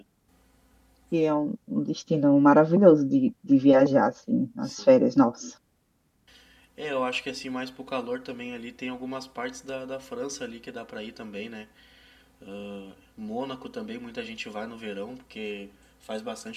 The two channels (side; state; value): both; identical; correlation 1.00